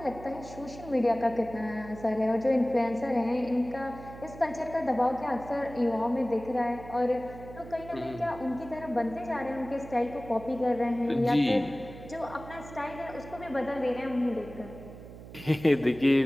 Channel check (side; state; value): right; noise; hum, 15 dB below the sound